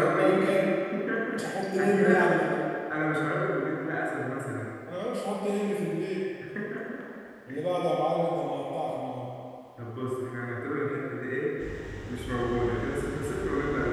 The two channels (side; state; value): both; identical; correlation 1.00